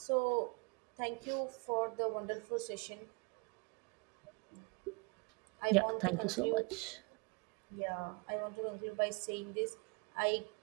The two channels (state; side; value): quieter; left; 31.4 dB